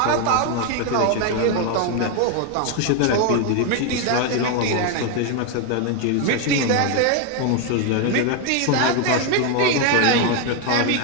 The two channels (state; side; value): different; both; correlation 0.01